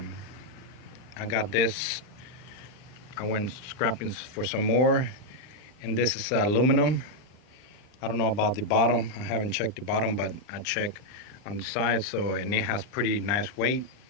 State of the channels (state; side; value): late; right; 39 ms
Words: I got this. I went scrapping for some more, and this is aluminum. I don't know about the bottom. I haven't checked the bottom, but I checked on the side. And it has pretty nice weight.